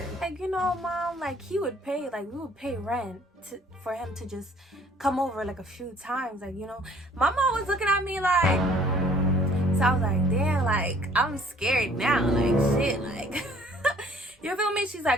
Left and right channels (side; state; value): both; normal; correlation 0.56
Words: Like, you know, mom, like he would pay, like we would pay rent for him to just come over like a few times. Like, you know, my mom was looking at me like, so I was like, damn, like I'm scared now. Like, shit, like, you feel me? She's